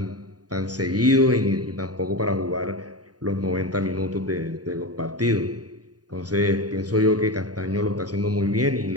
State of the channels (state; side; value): late; left; 0.68 ms